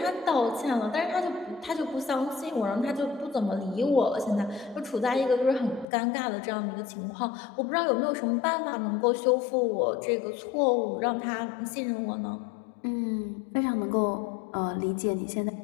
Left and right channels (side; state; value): right; drops out; at 5.9 s